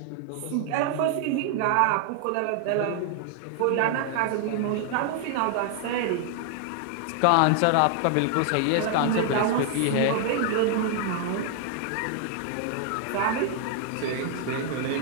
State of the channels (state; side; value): different; both; correlation 0.00